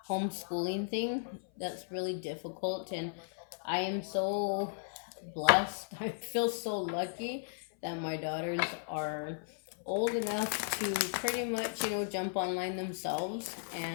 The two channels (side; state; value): right; silent; 54 dB below the other